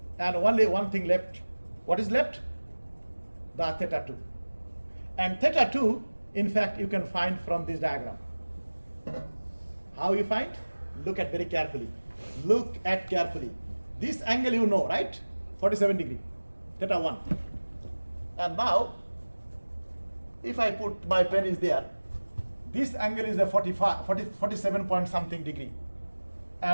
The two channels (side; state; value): both; inverted; correlation -1.00